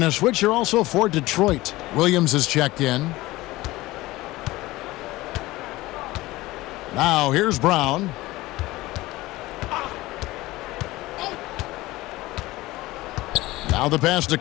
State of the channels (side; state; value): right; quieter; 18.9 dB